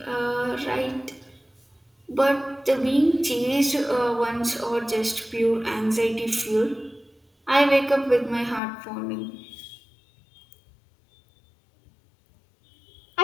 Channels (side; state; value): right; drops out; at 8.6 s